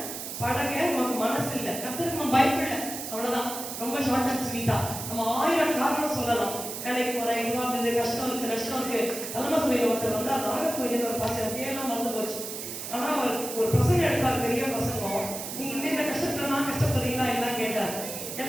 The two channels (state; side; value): noise; right; hiss, 7 dB below the sound